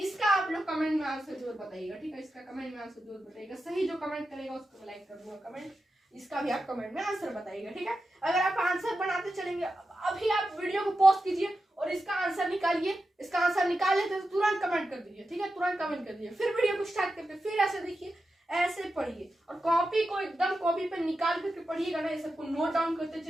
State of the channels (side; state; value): both; normal; correlation 0.90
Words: आप लोग कमेंट में आंसर जरूर बताइएगा, ठीक है, इसका कमेंट में आंसर जरूर बताइएगा, सही जो कमेंट करेगा उसको लाइक कर दूंगा कमेंट, इसका भी आप कमेंट में आंसर बताइएगा, ठीक है। अगर आप आंसर बनाते चलेंगे, अभी आप वीडियो को पॉज कीजिए और इसका आंसर निकालिए, इसका आंसर निकाल लेते तो तुरंत कमेंट कर दीजिए, ठीक है, तुरंत कमेंट कर दीजिए, फिर वीडियो को स्टार्ट करते, फिर ऐसे देखिए, ऐसे पढ़िए, और कॉपी को एकदम कॉपी पे निकाल करके पढ़िएगा ना, ये सबको नोट डाउन करते